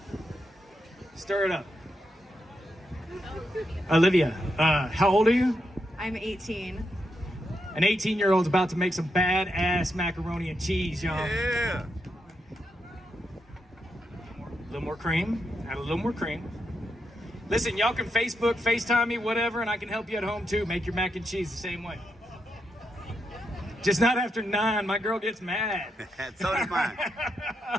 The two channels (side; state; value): both; normal; correlation 0.83